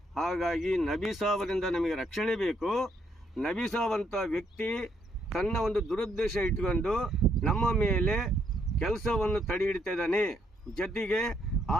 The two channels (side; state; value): both; normal; correlation 0.72